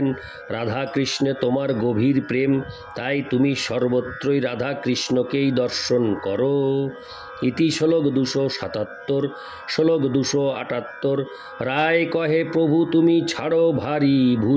রাধা কৃষ্ণে তোমার গভীর প্রেম, তাই তুমি সর্বত্রই রাধা কৃষ্ণকেই দর্শন করো। ইতি শ্লোক 277। শ্লোক 278। রায় কহে প্রভু তুমি ছাড়ো ভারী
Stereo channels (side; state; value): both; identical; correlation 1.00